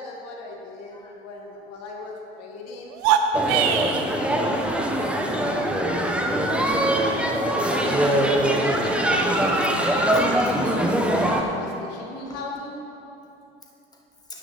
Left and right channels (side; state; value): both; normal; correlation 0.49